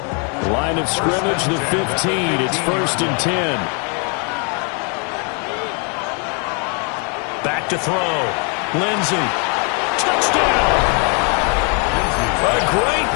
Line of scrimmage, the 15. It's 1st and 10. Back to throw. Lindsey. Touchdown! A great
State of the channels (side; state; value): right; quieter; 37.2 dB